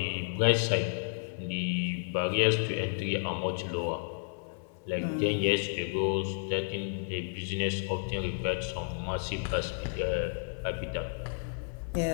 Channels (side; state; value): right; silent; 57 dB below the other